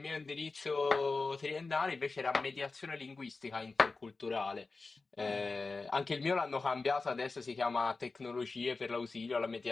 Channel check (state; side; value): quieter; right; 3.9 dB